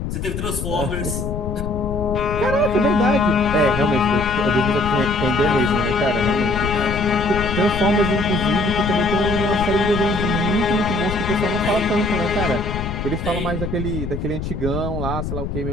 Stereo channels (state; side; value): noise; left; rumble, 5 dB below the sound